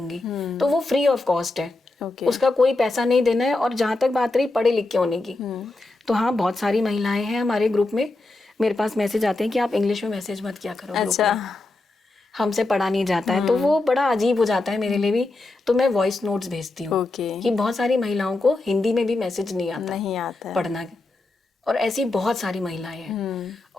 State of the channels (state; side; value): quieter; right; 3.1 dB